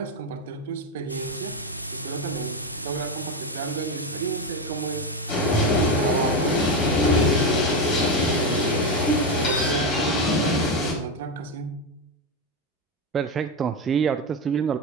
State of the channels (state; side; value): normal; both; correlation 0.11